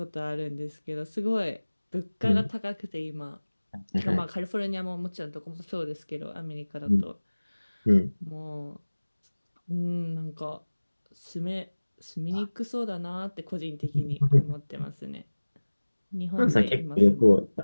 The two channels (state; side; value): inverted; both; correlation -1.00